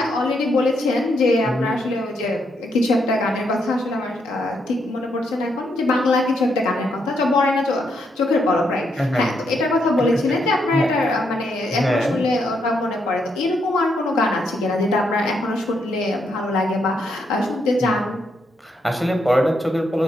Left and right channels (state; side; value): normal; both; correlation 0.78